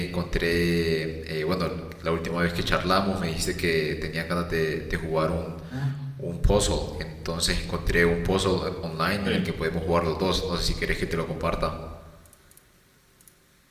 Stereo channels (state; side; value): identical; both; correlation 1.00